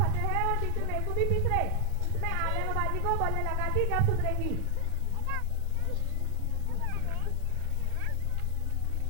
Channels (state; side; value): different; both; correlation 0.00